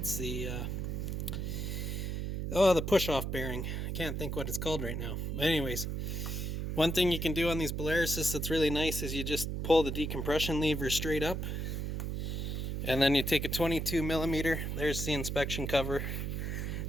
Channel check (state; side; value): noise; right; hum, 2 dB below the sound